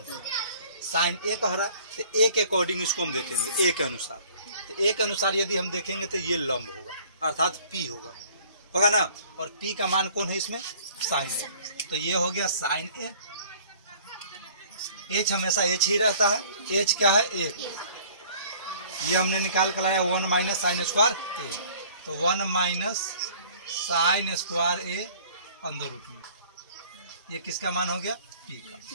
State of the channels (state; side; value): inverted; both; correlation -0.53